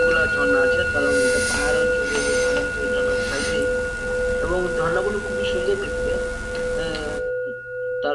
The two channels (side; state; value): both; identical; correlation 1.00